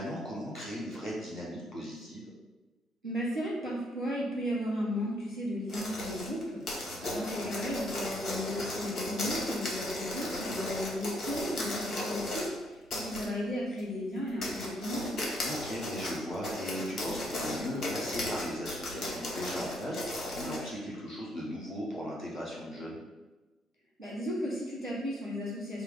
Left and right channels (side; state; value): both; normal; correlation 0.70